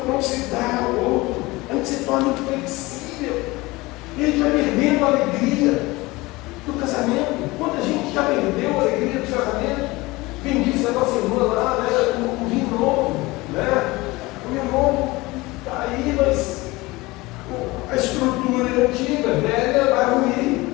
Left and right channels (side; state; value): right; quieter; 21.6 dB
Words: não se dá ao outro, a gente se torna inflexível, e a gente vai perdendo a alegria do casamento. Quanta gente já perdeu a alegria do casamento? Quem disse a nossa irmã lá, né, o vinho novo, né? O vinho novo está aí, mas a estrutura antiga, velha, vai ruir,